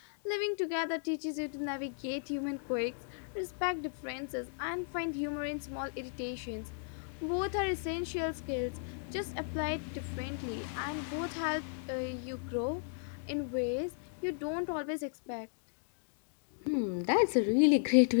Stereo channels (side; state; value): right; silent; digital silence